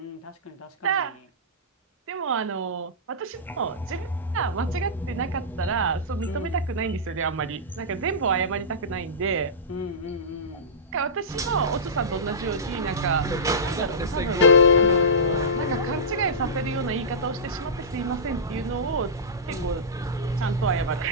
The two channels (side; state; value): both; normal; correlation -0.18